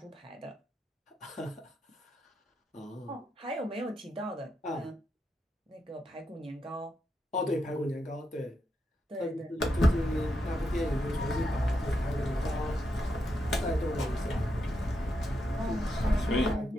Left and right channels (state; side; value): normal; both; correlation 0.83